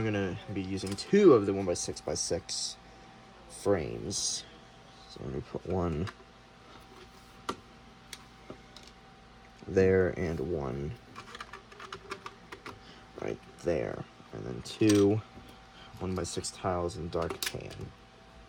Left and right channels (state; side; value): identical; both; correlation 1.00